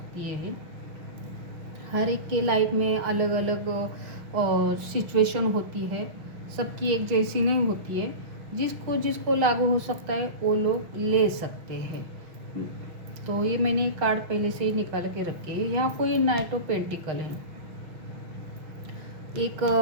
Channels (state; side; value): late; left; 6.5 ms